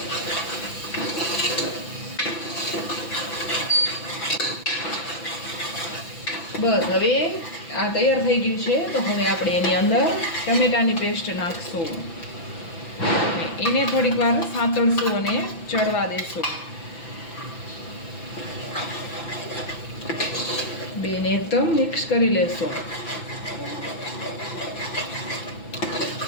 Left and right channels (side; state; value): right; late; 6.0 ms